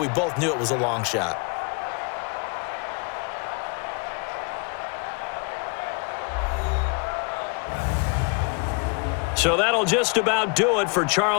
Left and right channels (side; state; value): right; quieter; 33.4 dB